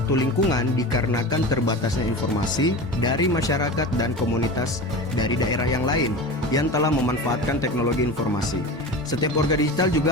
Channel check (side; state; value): both; normal; correlation 0.30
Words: lingkungan dikarenakan terbatasnya informasi dari masyarakat dan komunitas dari daerah yang lain yang telah memanfaatkan teknologi informasi. Setiap warga digital